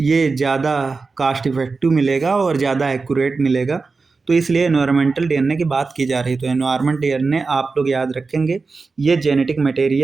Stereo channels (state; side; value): quieter; left; 4.2 dB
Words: ये ज़्यादा कास्ट इफेक्टिव मिलेगा और ज़्यादा एक्यूरेट मिलेगा। तो इसलिए एनवायरमेंटल डीएनए की बात की जा रही है। तो एनवायरमेंट डीएनए आप लोग याद रखेंगे, ये genetic